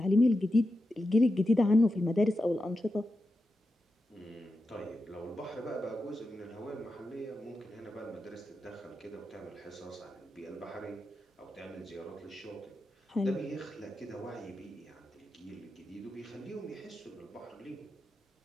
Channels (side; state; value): both; normal; correlation 0.89